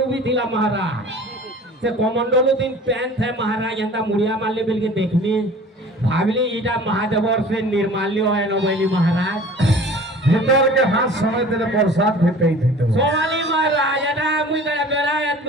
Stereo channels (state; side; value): normal; both; correlation 0.45